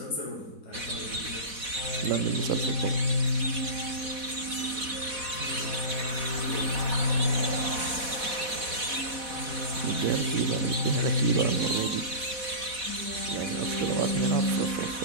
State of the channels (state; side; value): late; left; 4.1 ms